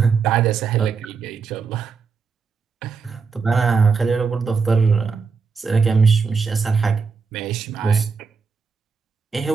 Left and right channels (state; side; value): quieter; left; 5.2 dB